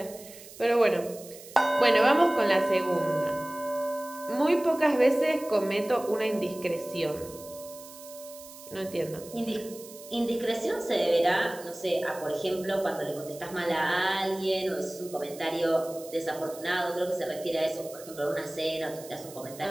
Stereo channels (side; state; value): right; noise; hiss, 17 dB below the sound